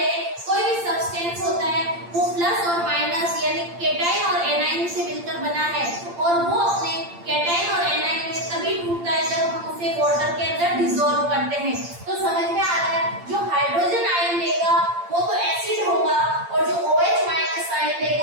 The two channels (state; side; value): late; left; 8.7 ms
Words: हैं कोई भी सब्सटेंस होता है वो प्लस और माइनस यानी केटाइन और एनाइन से मिलकर बना है, और वो अपने केटाइन और एनाइन में तभी टूटता है जब हम उसे वाटर के अंदर डिसॉल्व करते हैं। तो समझ में आ रहा है? जो हाइड्रोजन आयन देगा वो तो एसिड होगा, और जो OH- आयन